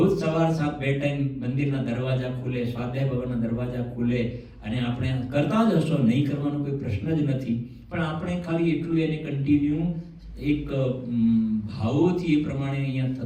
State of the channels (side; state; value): both; identical; correlation 1.00